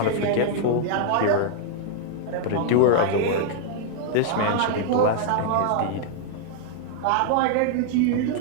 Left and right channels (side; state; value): both; different; correlation -0.01